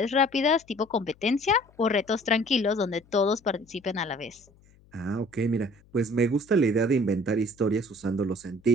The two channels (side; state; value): left; noise; hum, 29 dB below the sound